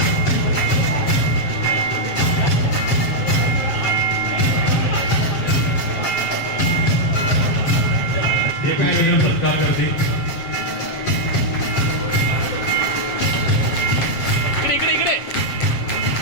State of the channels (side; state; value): right; late; 7.4 ms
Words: एक मिनिट सत्कार करते.